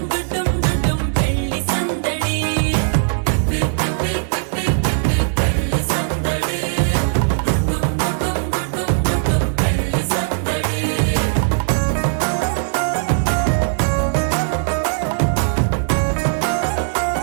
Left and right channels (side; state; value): left; silent; digital silence